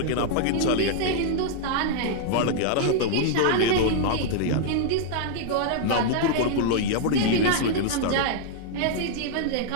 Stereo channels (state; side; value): different; both; correlation 0.00